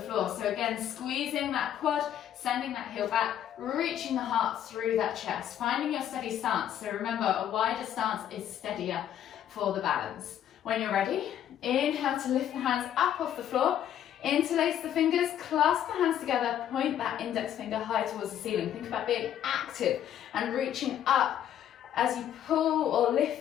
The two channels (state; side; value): quieter; right; 10.5 dB